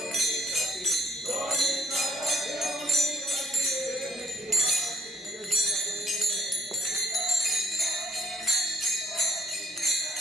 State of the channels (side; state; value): both; normal; correlation 0.65